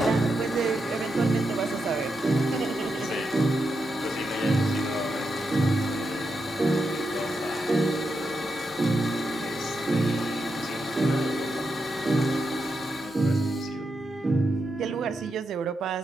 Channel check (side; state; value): both; normal; correlation 0.85